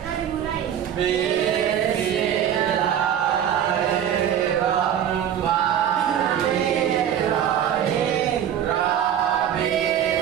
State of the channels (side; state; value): left; quieter; 9.7 dB